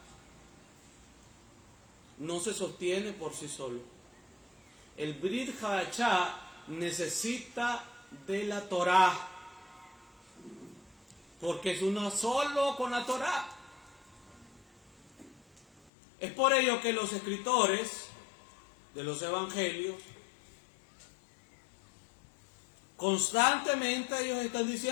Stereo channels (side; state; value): right; drops out; at 15.9 s